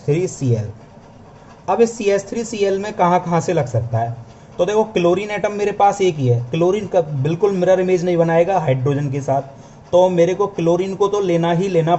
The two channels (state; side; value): identical; both; correlation 1.00